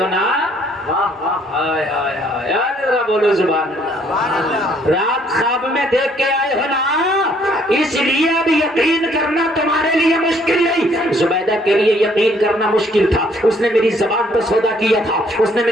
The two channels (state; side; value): normal; both; correlation 0.65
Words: نا، ہائے ہائے ہائے، ذرا بولو سبحان اللہ۔ رات خواب میں دیکھ کے آئے ہو نا، اس لیے اب یقین کرنا تمہارے لیے مشکل نہیں۔ زبیدہ کے لیے یقین کرنا مشکل تھا، اس نے میری زبان پر سودا کیا تھا، اس نے